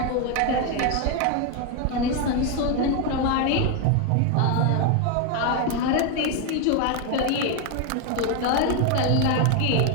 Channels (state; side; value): different; both; correlation 0.01